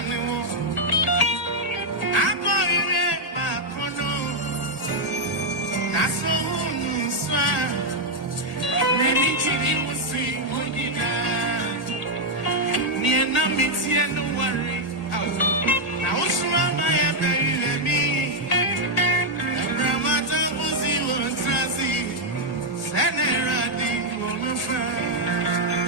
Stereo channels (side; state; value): right; late; 1.6 ms